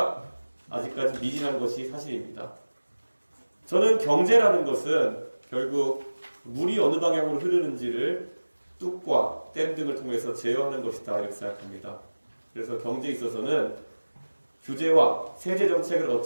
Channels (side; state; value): both; inverted; correlation -1.00